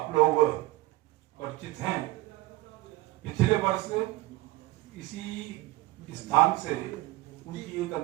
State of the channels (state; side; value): quieter; left; 19.2 dB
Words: लोग परिचित हैं। पिछले वर्ष इसी स्थान से उनकी एक